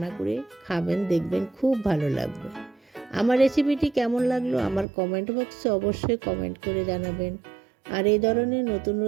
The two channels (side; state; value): left; drops out; at 4.9 s